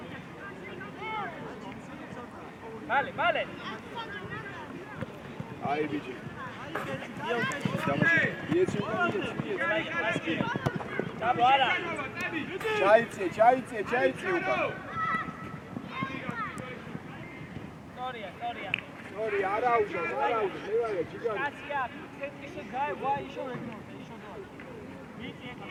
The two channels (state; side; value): identical; both; correlation 1.00